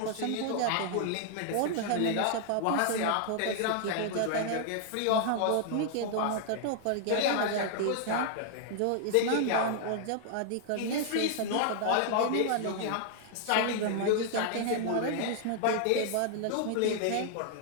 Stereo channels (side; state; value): both; different; correlation 0.00